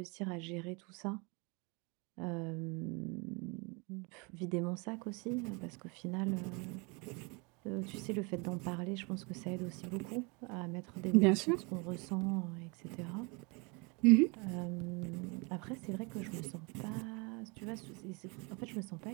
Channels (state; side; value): quieter; left; 30.1 dB